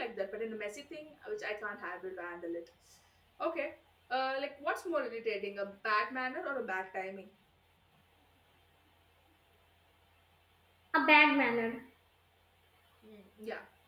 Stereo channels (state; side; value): identical; both; correlation 1.00